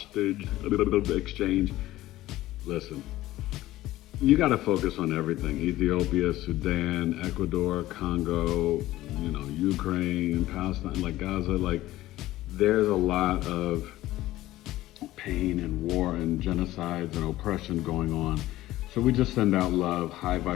exchange. Listen, you got to focus on everything. Ethiopia, Sudan, Ecuador, Congo, Ukraine, Palestine, like Gaza, there's a lot of pain and war and genocides and oppression going on. So we just send out love, high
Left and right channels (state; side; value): quieter; right; 16.0 dB